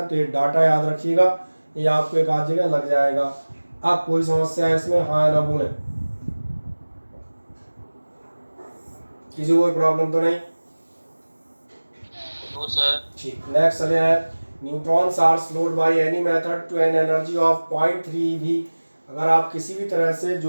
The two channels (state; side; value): inverted; both; correlation -1.00